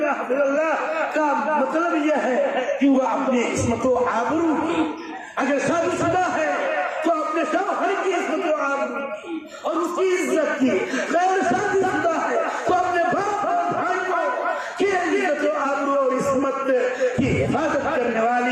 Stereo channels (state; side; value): identical; both; correlation 1.00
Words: حفظ اللہ کا مطلب یہ ہے کہ وہ اپنے عصمت و آبرو کی, اگر شادی شدہ ہے تو اپنے شوہر کی عصمت و آبرو کی اور اس کی عزت کی, غیر شادی شدہ ہے تو اپنے باپ اور بھائیوں کی عزت و آبرو اور عصمت کی حفاظت کرنے